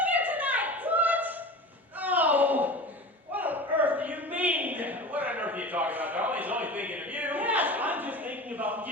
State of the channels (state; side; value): normal; both; correlation 0.33